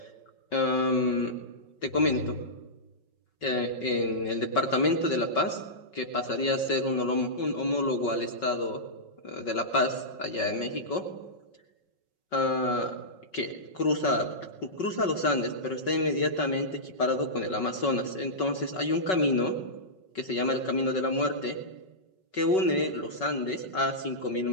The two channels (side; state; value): right; late; 5.4 ms